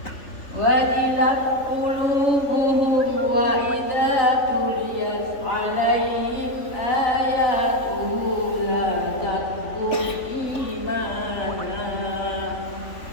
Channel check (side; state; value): right; late; 3.5 ms